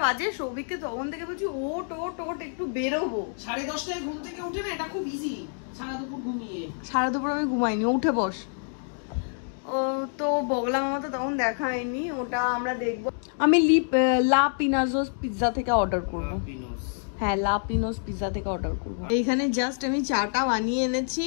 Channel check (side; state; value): right; silent; 60 dB below the other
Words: বাজে, সৌভিককে তখন থেকে বলছি ওট ওট ওট একটু বেরোবো। 10:30টায় ঘুম থেকে উঠে না, এটা খুব ইজি, সারা দুপুর ঘুমিয়ে। সারা দুপুর আমি ঘুমাইনি, উঠে বস। ও তো বগলা মামা তো তখন দেখা হয়নি, ওটা আমরা দেখবো। আমি লা পিনাজোস পিৎজা থেকে অর্ডার করবো। হ্যাঁ, লা পিনোস পিৎজা থেকে অর্ডার করবো। এইখানে জাস্ট আমি চাটা বানিয়ে এনেছি,